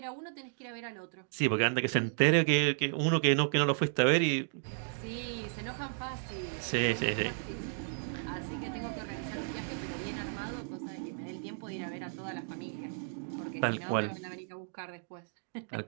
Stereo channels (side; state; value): left; silent; digital silence